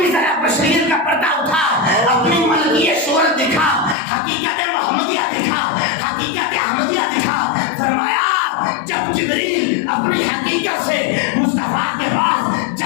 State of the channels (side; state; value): right; drops out; at 4.0 s